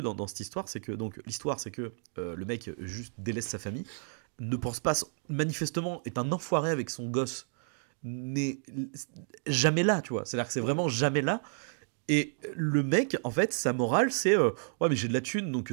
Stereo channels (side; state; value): left; silent; 57 dB below the other